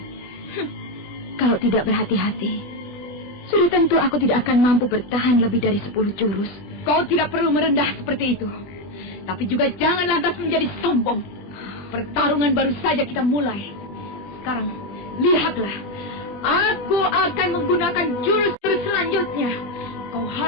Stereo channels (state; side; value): late; right; 20 ms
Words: Kalau tidak berhati-hati, sudah tentu aku tidak akan mampu bertahan lebih dari 10 jurus. Kau tidak perlu merendah seperti itu. Tapi juga jangan lantas menjadi sombong. Pertarungan baru saja kita mulai. Sekarang, lihatlah. Aku akan menggunakan jurus-jurus selanjutnya. Kau